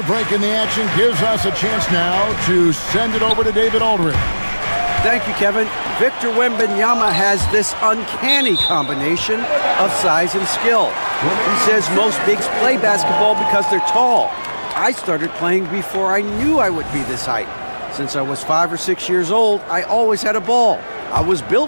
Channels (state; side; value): inverted; both; correlation -1.00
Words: break in the action, gives us a chance now to send it over to David Aldridge. Thank you, Kevin. Victor Wembanyama has this uncanny combination of size and skill. He says most bigs play basketball because they're tall. I started playing before I knew I would be this height. Since I was 5 or 6 years old, I always had a ball. I was